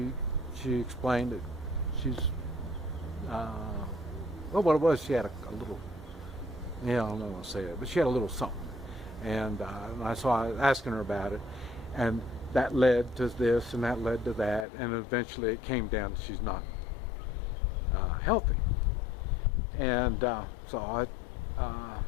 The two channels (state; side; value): drops out; right; at 14.7 s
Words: explained that she's well, what it was, she had a little, I don't know how to say it, but she had a little something, and so I was asking her about it, and that led to this and that led to that, and eventually it came down to she's not healthy. And so